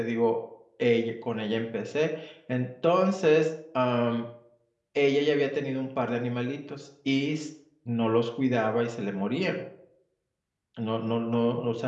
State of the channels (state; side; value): identical; both; correlation 1.00